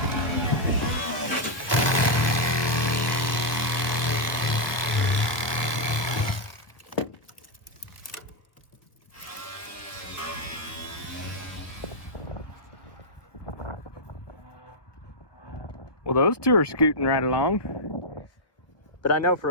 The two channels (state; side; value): late; right; 1.4 ms